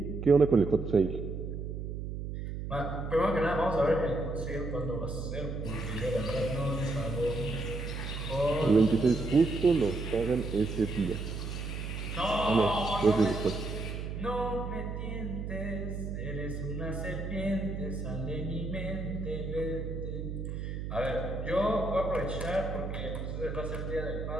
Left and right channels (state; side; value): noise; right; hum, 5 dB below the sound